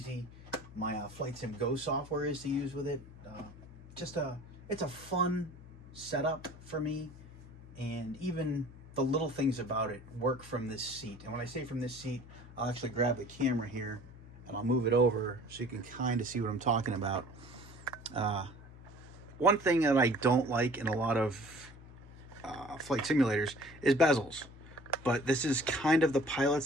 my Flightsim Go software is to use with it. It's a fun setup for me, and even the little things about it work from this seat. And when I say from this seat, I'll actually grab the camera here and I'll move it over so you can kind of see what I'm talking about. One thing that I don't like in a lot of flight simulators is bezels, but this is kind of the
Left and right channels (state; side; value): noise; left; hum, 18 dB below the sound